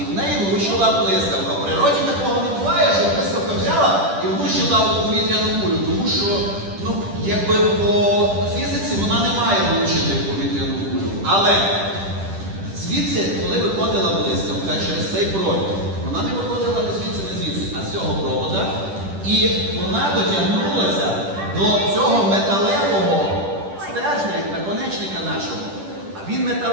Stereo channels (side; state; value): left; late; 10 ms